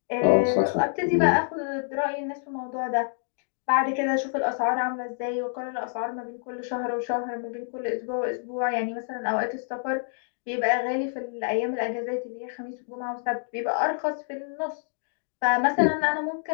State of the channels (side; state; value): right; silent; digital silence